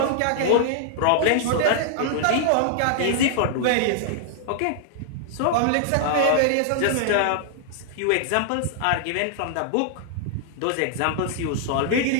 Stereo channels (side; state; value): both; different; correlation -0.01